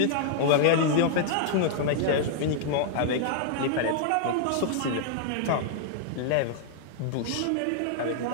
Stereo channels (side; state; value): both; different; correlation -0.01